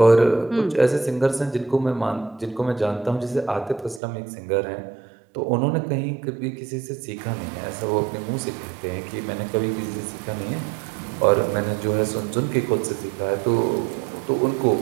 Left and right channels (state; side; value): drops out; left; at 4.0 s